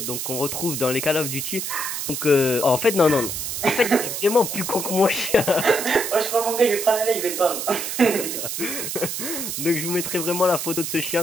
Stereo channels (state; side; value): noise; right; hiss, 4 dB below the sound